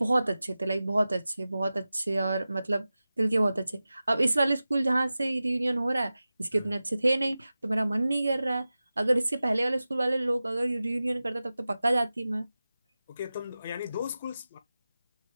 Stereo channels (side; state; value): both; inverted; correlation -0.95